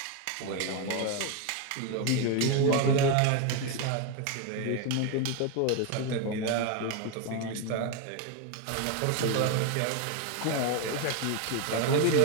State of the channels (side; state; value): both; different; correlation 0.01